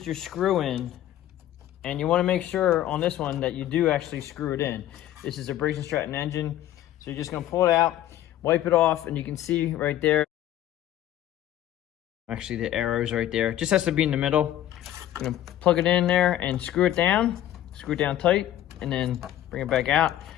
your screw in. And you want to make sure on this one that you do actually screw it in. This is a Briggs & Stratton engine. So you're just going to pull it out, wipe it off, and you can see right there. Actually, the arrow's right there. It just has to be in the middle. I'm going to plug it in there and screw it down tight, and then bring it back out.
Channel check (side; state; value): right; quieter; 12.6 dB